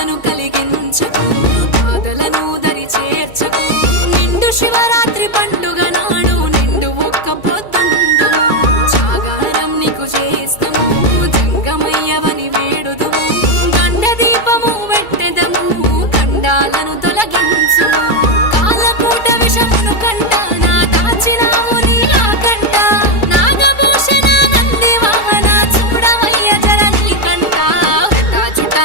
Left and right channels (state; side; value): late; right; 2.3 ms